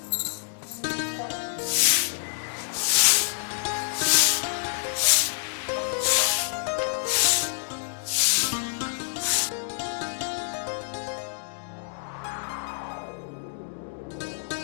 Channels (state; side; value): silent; right; digital silence